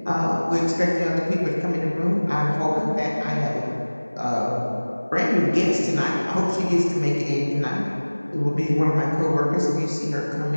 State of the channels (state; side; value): inverted; both; correlation -1.00